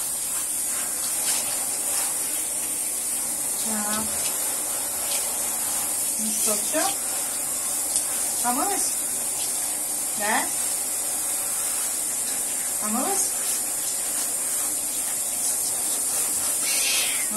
Так. Ну что, все? Помылась? Да? Помылась?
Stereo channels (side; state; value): left; noise; rumble, 27 dB below the sound